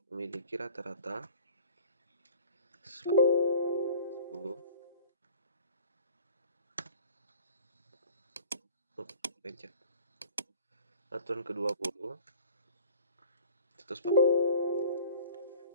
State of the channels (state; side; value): inverted; both; correlation -0.47